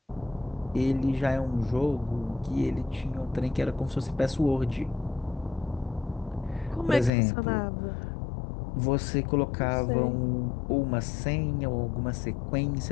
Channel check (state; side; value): drops out; right; at 7.1 s